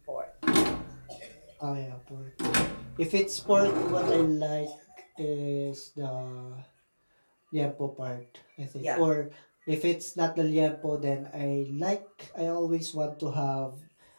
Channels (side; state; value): both; inverted; correlation -1.00